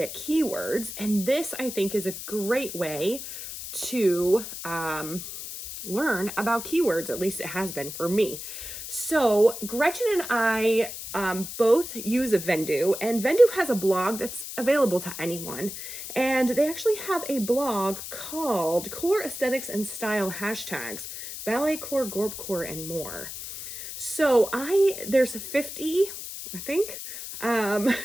keywords, and this I think is a great way to learn about keywords. At least it has been for me. So Gretchen and I both use a Vendoo, and Vendoo has a blog that's available to anyone. And they actually have a blog called Core Aesthetics and Style Hashtags, Ballet Core, Gorp Core, and more. So there's 50, I think,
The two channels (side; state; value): left; noise; hiss, 9 dB below the sound